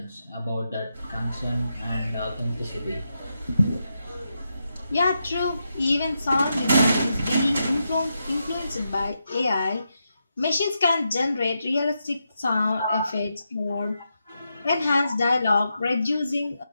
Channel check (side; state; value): both; inverted; correlation -0.85